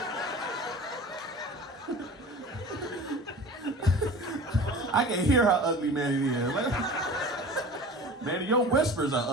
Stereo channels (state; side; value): normal; both; correlation 0.39